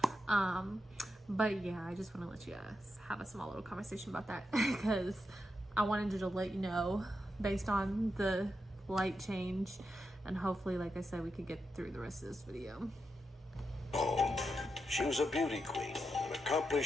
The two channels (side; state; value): both; normal; correlation 0.86